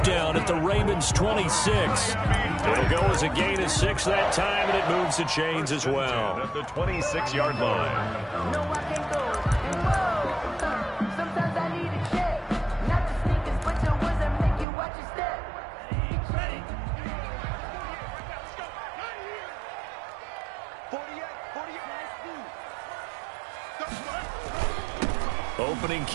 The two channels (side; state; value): left; drops out; at 14.7 s